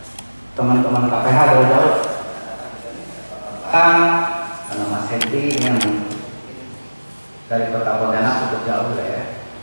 Teman-teman KPH dari jauh. Karena Mas Henry yang dari Kota Pontianak cukup jauh ya.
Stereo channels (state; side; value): inverted; both; correlation -1.00